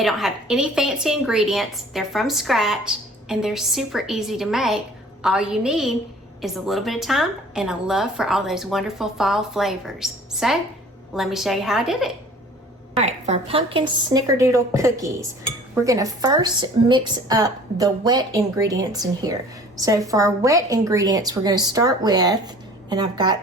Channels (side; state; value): both; normal; correlation 0.49